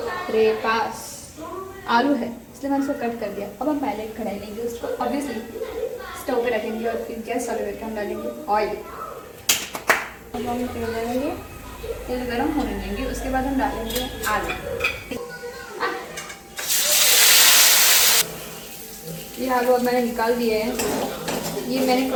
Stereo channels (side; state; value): both; identical; correlation 1.00